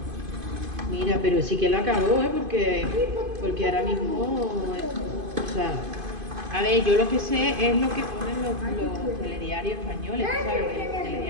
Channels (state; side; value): late; left; 2.5 ms